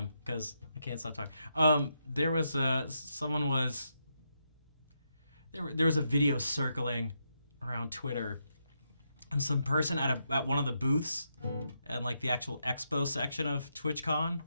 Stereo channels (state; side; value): inverted; both; correlation -0.82